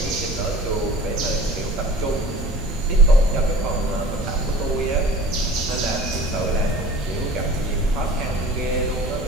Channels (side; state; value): both; normal; correlation 0.44